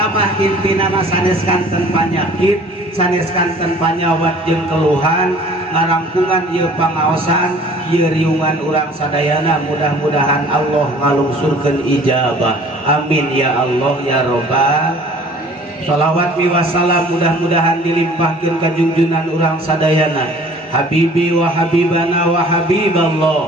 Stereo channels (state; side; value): normal; both; correlation 0.50